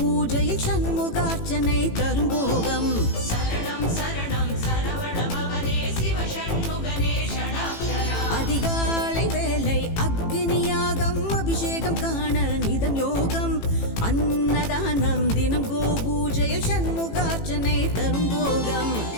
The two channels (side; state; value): right; late; 18 ms